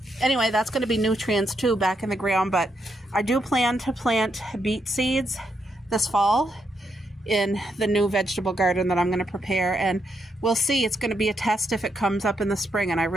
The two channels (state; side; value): normal; both; correlation 0.80